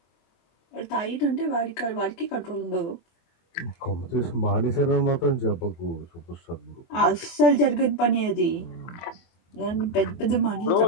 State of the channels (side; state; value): right; late; 24 ms